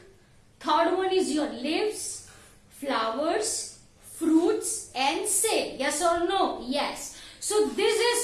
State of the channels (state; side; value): identical; both; correlation 1.00